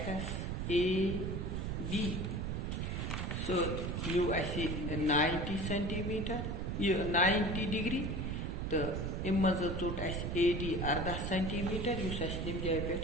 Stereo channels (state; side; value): noise; right; rumble, 2 dB below the sound